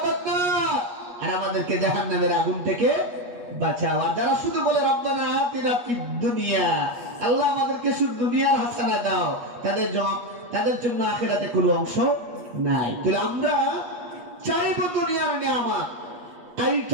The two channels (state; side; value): late; left; 8.3 ms